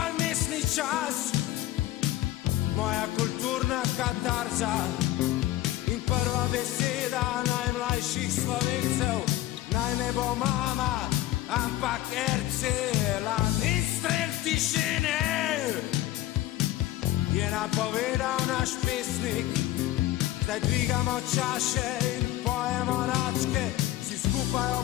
mestni čas, moja kulturna katarza in prva beseda najmlajših Slovencev, naj ne bo mama, ampak Ercelan. In strel tišine je napovedal naš pesnik, zdaj dvigamo čaše in pojemo račke, vsi skupaj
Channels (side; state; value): right; quieter; 15.1 dB